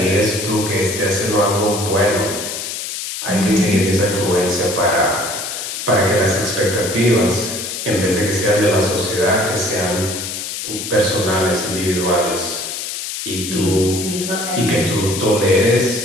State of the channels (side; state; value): left; noise; hiss, 6 dB below the sound